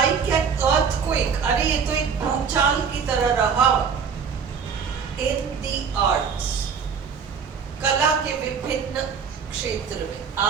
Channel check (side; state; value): left; quieter; 6.4 dB